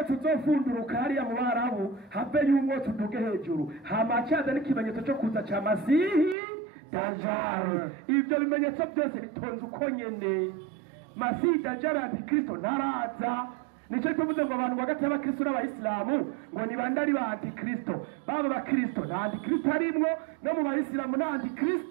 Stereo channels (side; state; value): left; drops out; at 6.4 s